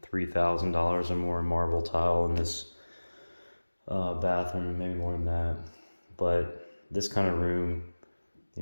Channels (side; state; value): both; inverted; correlation -1.00